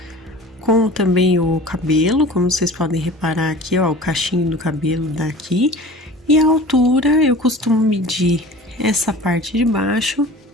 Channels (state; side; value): normal; both; correlation 0.41